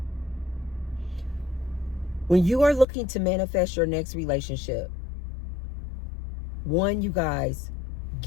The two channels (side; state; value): right; drops out; at 2.9 s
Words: When you are looking to manifest your next relationship, one, you guys,